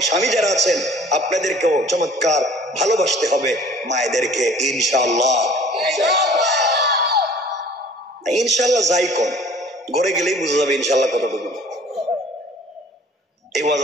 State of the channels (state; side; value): normal; both; correlation 0.50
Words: স্বামী যারা আছেন আপনাদেরকেও চমৎকার ভালোবাসতে হবে মায়েদেরকে। ইনশাআল্লাহ ইনশাআল্লাহ যাই কোন ঘরে গেলেই বুঝা যাবে ইনশাআল্লাহ কতটুকু। এই ওয়াজ